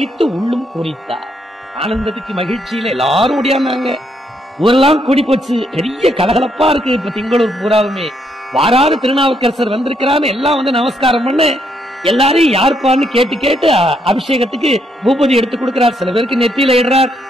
உள்ளும் பூரித்தார். ஆனந்தத்துக்கு மகிழ்ச்சியில எல்லாரும் ஓடியாந்தாங்க. ஊரெல்லாம் கூடி போச்சு. பெரிய கலகலப்பா இருக்கு. இப்ப திங்களூர் பூராவுமே வாராறு திருநாவுக்கரசர் வந்திருக்கிறான்னு எல்லாம் வந்து நமஸ்காரம் பண்ண எல்லாரையும் யாருப்பான்னு கேட்டு கேட்டு அபிஷேகத்துக்கு பூபதி எடுத்து கொடுக்கிறார். சில பேருக்கு நெத்தியில இடுறார்,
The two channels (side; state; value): both; normal; correlation 0.74